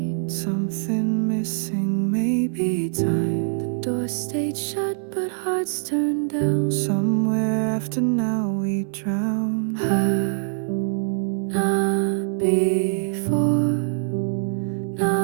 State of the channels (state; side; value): silent; left; 63 dB below the other